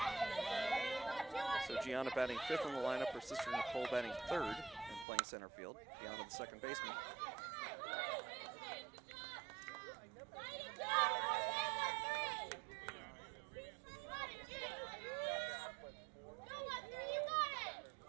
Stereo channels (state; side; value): drops out; left; at 5.1 s